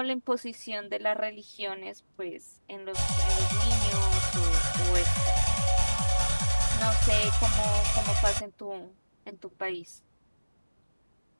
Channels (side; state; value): both; inverted; correlation -1.00